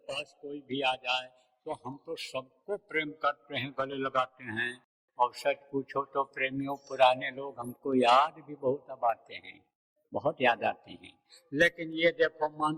पास कोई भी आ जाए तो हम तो सबको प्रेम करते हैं, गले लगाते हैं। और सच पूछो तो प्रेमियों, पुराने लोग हमको याद भी बहुत अब आते हैं, बहुत याद आते हैं। लेकिन ये देखो मान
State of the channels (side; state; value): both; identical; correlation 1.00